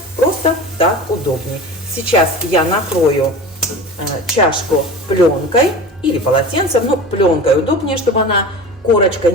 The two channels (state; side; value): normal; both; correlation 0.34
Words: Просто так удобнее. Сейчас я накрою чашку пленкой или полотенцем, но пленкой удобнее, чтобы она, корочка,